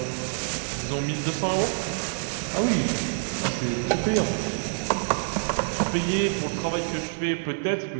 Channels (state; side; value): silent; left; 60 dB below the other